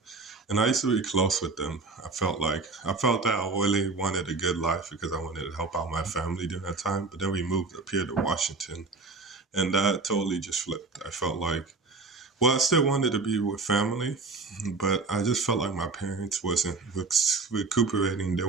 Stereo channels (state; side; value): quieter; left; 4.0 dB